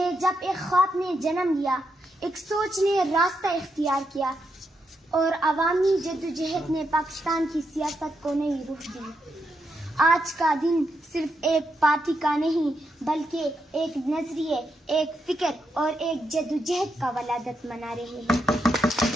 جب ایک خواب نے جنم لیا، ایک سوچ نے راستہ اختیار کیا اور عوامی جدوجہد نے پاکستان کی سیاست کو نئی رخ دی۔ آج کا دن صرف ایک پارٹی کا نہیں بلکہ ایک نظریے، ایک فکر اور ایک جدوجہد کا ولادت منا رہے ہیں۔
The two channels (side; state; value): both; normal; correlation 0.82